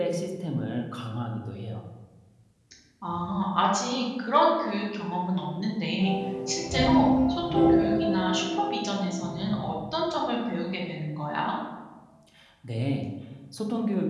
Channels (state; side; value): identical; both; correlation 1.00